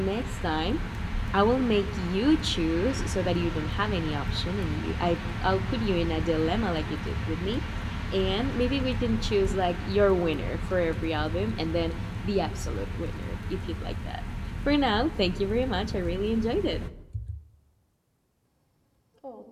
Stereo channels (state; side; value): identical; both; correlation 1.00